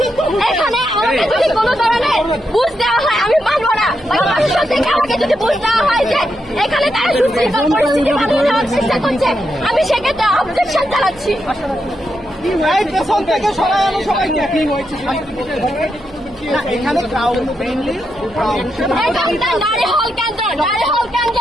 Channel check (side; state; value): right; noise; hum, 26 dB below the sound